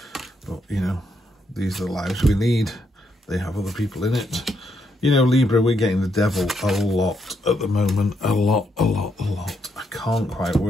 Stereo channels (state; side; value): normal; both; correlation 0.77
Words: But, you know, these are the lives we lead. They have other people in it. You know, Libra, we're getting the devil a lot at the moment. A lot. I can't quite